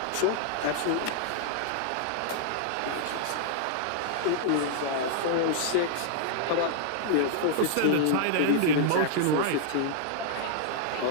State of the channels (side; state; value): both; different; correlation -0.01